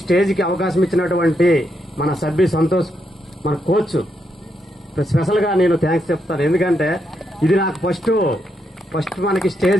స్టేజ్కి అవకాశం ఇచ్చినటువంటి మన సభ్యు సంతోష్, మన కోచ్ స్పెషల్ గా నేను థ్యాంక్స్ చెప్తాను. ఎందుకంటే ఇది నాకు ఫస్ట్ ఫస్ట్ మనకి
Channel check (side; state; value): both; normal; correlation 0.80